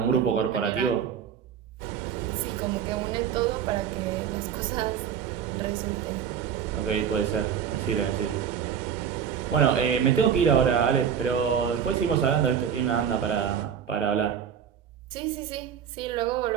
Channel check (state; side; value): quieter; left; 8.2 dB